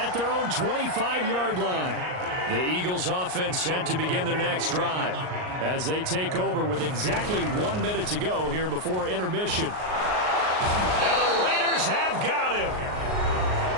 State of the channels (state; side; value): late; left; 38 ms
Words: their own 25-yard line. The Eagles offense set to begin their next drive as they take over with exactly 1 minute to go here before intermission. And the Raiders have got him.